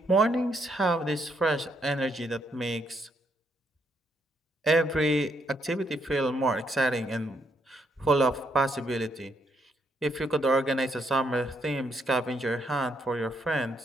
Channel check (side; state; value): both; normal; correlation 0.74